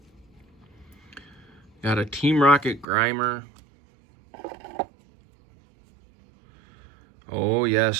Got a Team Rocket Grimer. Oh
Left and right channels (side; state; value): left; drops out; at 2.9 s